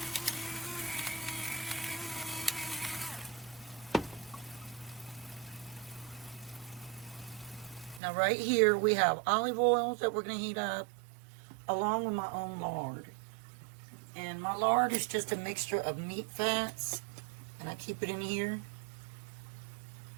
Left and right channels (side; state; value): left; drops out; at 8.0 s